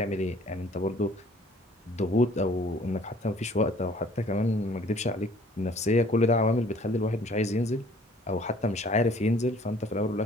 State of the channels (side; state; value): both; normal; correlation 0.55